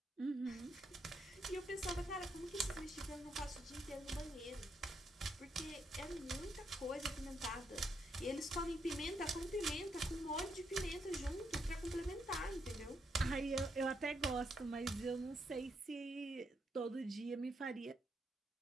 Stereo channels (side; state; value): both; normal; correlation 0.78